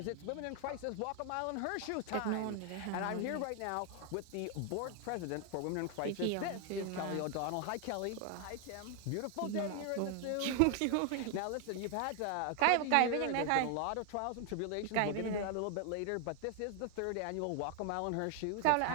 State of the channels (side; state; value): both; different; correlation 0.00